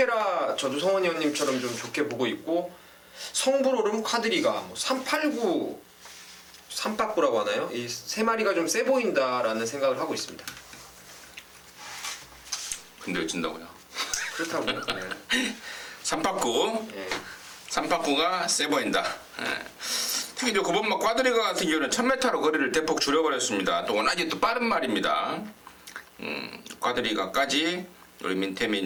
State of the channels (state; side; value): identical; both; correlation 1.00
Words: 저도 성원 의원님처럼 좀 좋게 보고 있고, 성불오름 콰드리가 뭐 389 3빠꾸라고 하나요? 이 세 마리가 좀 세 보인다라는 생각을 하고 있습니다. 근데 진다고요? 그렇다고요. 네. 삼박구. 예. 삼박구가 세 보인다. 특히 저 9번마 꽈드리가 같은 경우는 1000m로 거리를 대폭 줄여버렸습니다. 또 워낙에 또 빠른 말입니다. 꽈드리가까지 우리 민태민